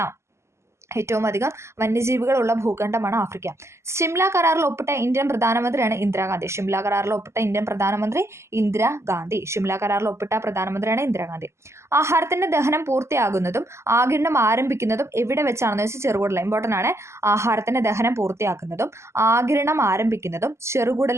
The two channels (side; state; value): left; late; 0.13 ms